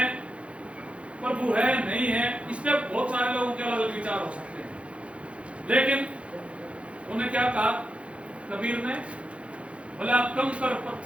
प्रभु है नहीं है, इस पे बहुत सारे लोगों के अलग अलग विचार हो सकते हैं। लेकिन उन्हें क्या कहा कबीर ने? बोले आप कंकर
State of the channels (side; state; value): left; late; 0.061 ms